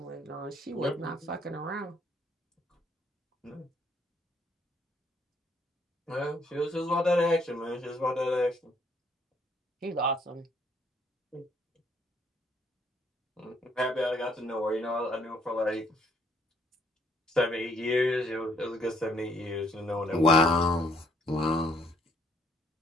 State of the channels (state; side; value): normal; both; correlation 0.67